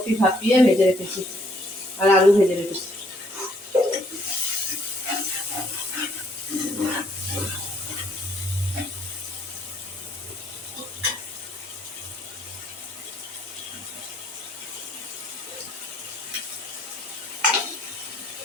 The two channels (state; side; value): normal; both; correlation 0.66